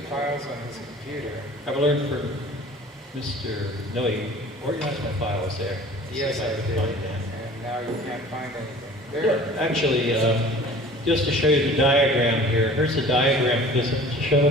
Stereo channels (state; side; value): normal; both; correlation 0.46